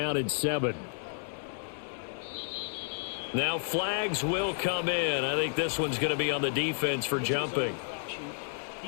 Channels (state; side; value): silent; right; 57 dB below the other